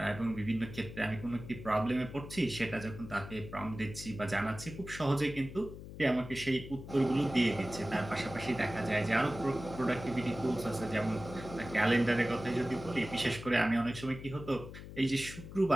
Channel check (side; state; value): left; noise; hum, 12 dB below the sound